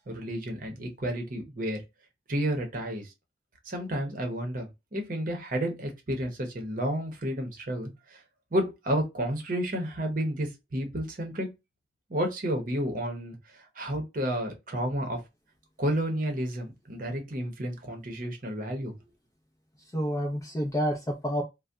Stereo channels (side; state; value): both; normal; correlation 0.56